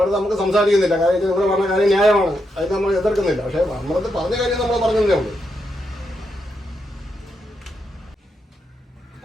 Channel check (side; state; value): both; normal; correlation 0.82